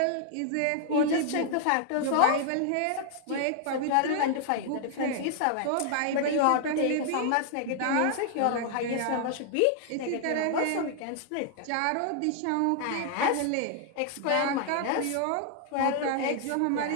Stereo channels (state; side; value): different; both; correlation 0.00